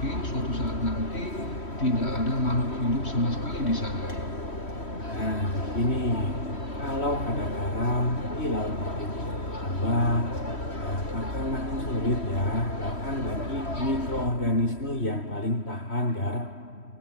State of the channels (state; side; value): late; right; 3.1 ms